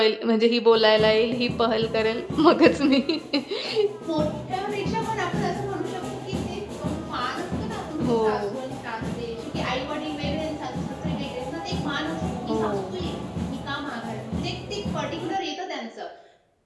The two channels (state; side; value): identical; both; correlation 1.00